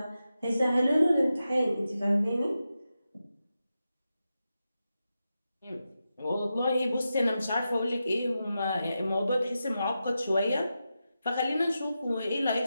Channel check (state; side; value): inverted; both; correlation -0.90